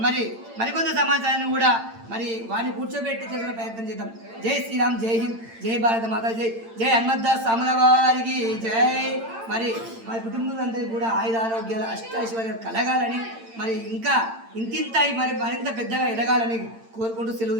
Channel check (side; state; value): left; late; 8.8 ms